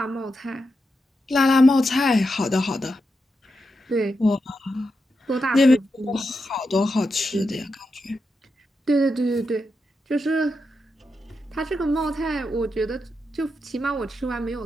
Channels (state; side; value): normal; both; correlation 0.87